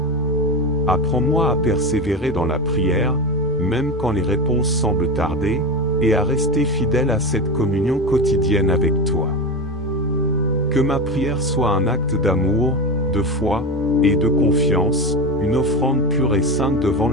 Apprends-moi à persévérer dans la prière, même quand les réponses semblent tarder, et à rester fidèle à cette communion quotidienne avec toi. Que ma prière soit un acte d'amour, de foi, et de confiance, une offrande pure et sainte devant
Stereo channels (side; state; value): both; normal; correlation 0.21